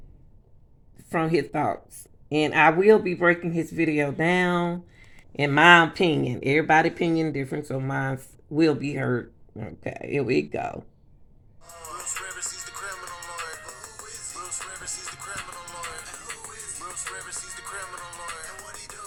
From his thoughts. And I will be breaking his video down in my opinion. Everybody's opinion different, so mine will be heard. Okay, here we go. Bruce Rivers, he's the criminal lawyer. Bruce Rivers, he's the criminal lawyer. Bruce Rivers, he's the criminal lawyer. And what he do?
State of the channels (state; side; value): identical; both; correlation 1.00